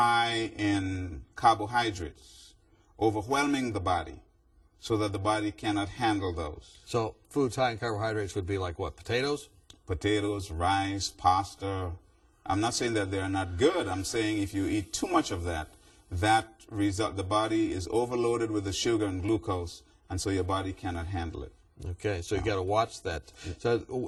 in carbohydrates, overwhelming the body so that the body cannot handle those. So foods high in carbohydrates would be like what, potatoes? Potatoes, rice, pasta. I'm not saying that they're not good. I'm saying if you eat too much of that, the body is overloaded with the sugar and glucose, and so your body cannot handle it. Okay, so you got to watch that. So,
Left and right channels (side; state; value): both; identical; correlation 1.00